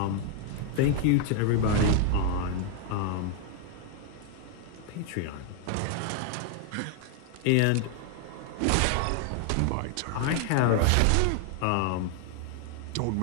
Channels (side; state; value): both; different; correlation 0.00